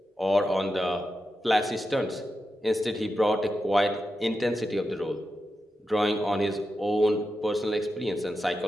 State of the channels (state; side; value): normal; both; correlation 0.89